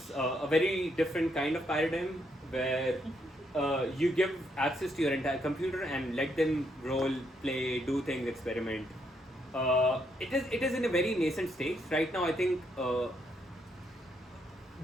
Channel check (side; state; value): both; normal; correlation 0.76